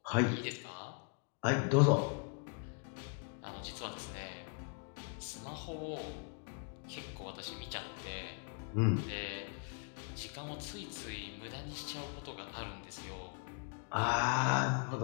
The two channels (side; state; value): right; quieter; 37.6 dB